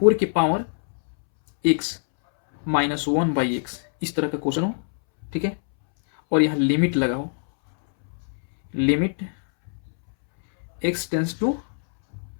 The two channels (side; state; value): right; silent; 63 dB below the other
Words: के power x minus one by x, इस तरह का क्वेश्चन हो, ठीक है, और यहाँ लिमिट लगा हो, limit x tends to